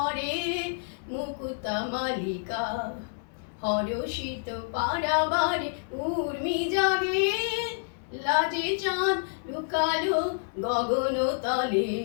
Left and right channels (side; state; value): right; silent; 59 dB below the other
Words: মুকুতা মালিকা। হরষিত পারাবারে উর্মি জাগে, লাজে চাঁদ লুকালো গগন তলে।